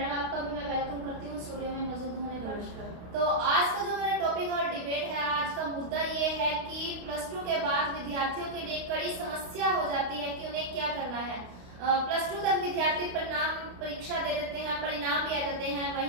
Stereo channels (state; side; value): late; left; 29 ms